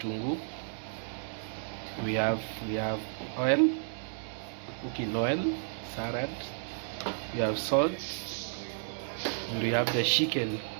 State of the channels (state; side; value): silent; left; digital silence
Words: We have oil, cooking oil, salad. We have salt, and we have the chicken.